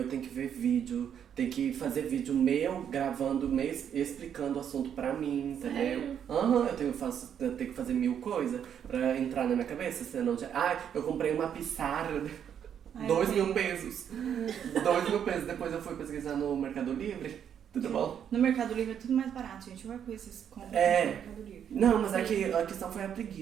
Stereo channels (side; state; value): left; quieter; 8.7 dB